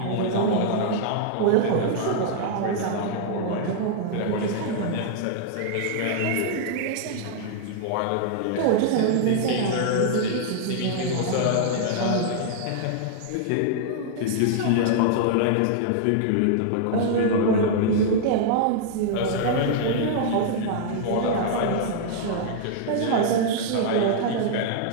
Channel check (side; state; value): both; different; correlation -0.01